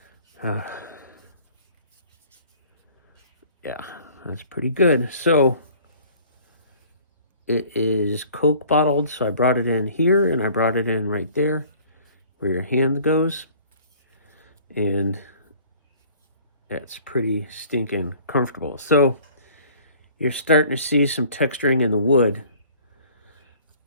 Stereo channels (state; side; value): inverted; both; correlation -0.52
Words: Yeah, that's pretty good. So it is Coke bottled. So I brought it in here and I brought it in right there where your hand goes. And it's pretty stinking comfortable. So you're starting to see some texturing in the wood.